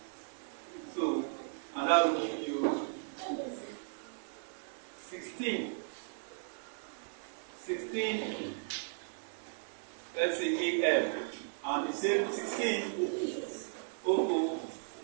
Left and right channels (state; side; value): silent; left; 54 dB below the other